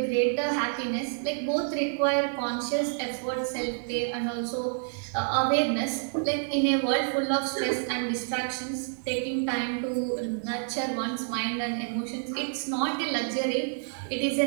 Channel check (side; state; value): left; silent; 59 dB below the other